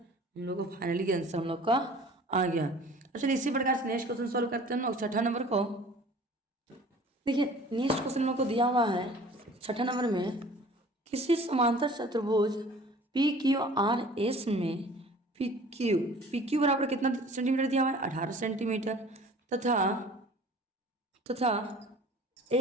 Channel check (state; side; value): normal; both; correlation 0.47